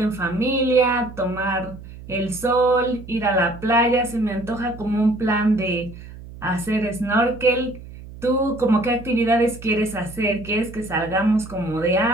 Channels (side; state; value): right; noise; hum, 15 dB below the sound